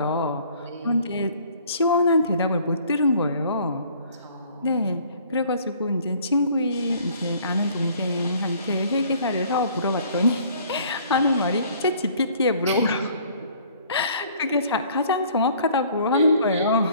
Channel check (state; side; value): inverted; both; correlation -0.56